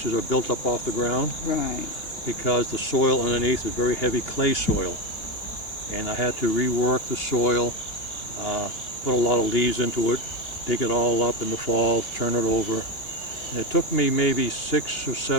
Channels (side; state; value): right; late; 2.8 ms